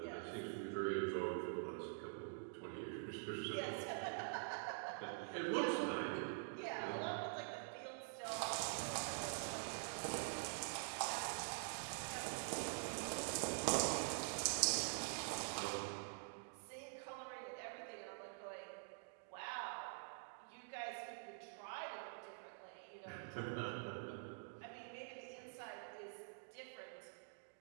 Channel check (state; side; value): silent; left; digital silence